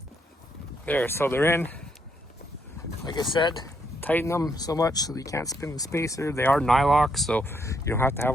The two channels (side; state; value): both; normal; correlation 0.75